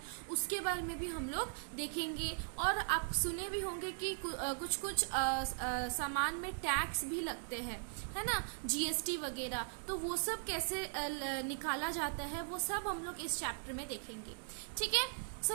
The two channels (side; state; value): left; silent; digital silence